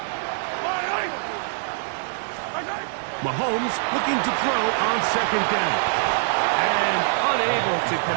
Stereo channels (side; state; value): left; silent; digital silence